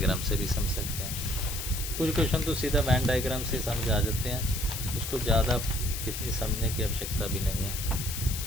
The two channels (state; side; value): noise; left; hiss, 5 dB below the sound